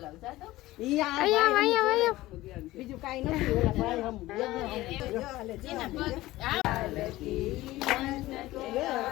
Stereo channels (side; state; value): right; quieter; 17.4 dB